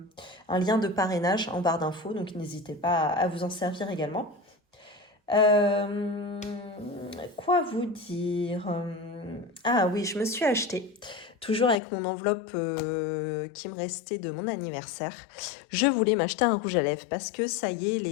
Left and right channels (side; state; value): right; drops out; at 11.8 s